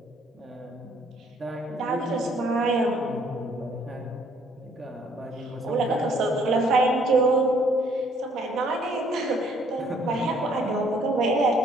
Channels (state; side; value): normal; both; correlation 0.63